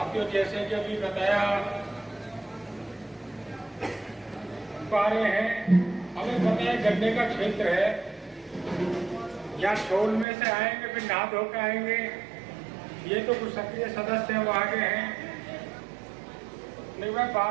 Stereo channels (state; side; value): drops out; left; at 10.2 s